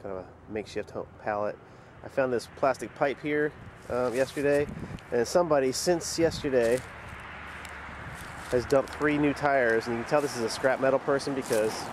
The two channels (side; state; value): both; identical; correlation 1.00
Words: of a makeshift pallet. I found this plastic pipe here yesterday, and somebody since yesterday has dumped 3 new tires, and you can tell this is a scrap metal person because